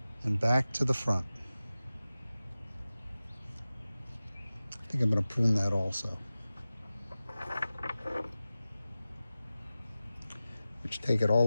And back to the front. I think I'm going to prune that also. Which take it all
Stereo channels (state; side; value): inverted; both; correlation -0.95